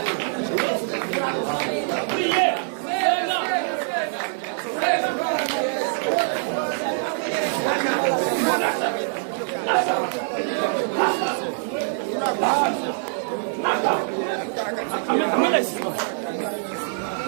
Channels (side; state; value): left; silent; digital silence